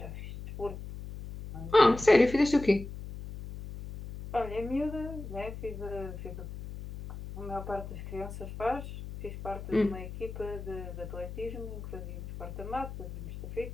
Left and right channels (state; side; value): noise; left; hum, 10 dB below the sound